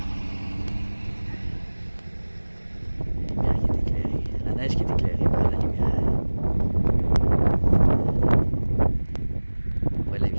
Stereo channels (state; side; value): inverted; both; correlation -1.00